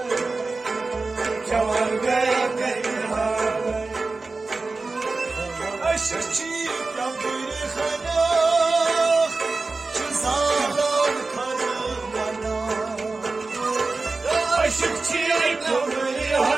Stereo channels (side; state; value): left; quieter; 3.7 dB